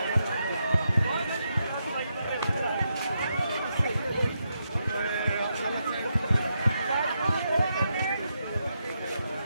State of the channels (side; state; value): both; inverted; correlation -0.83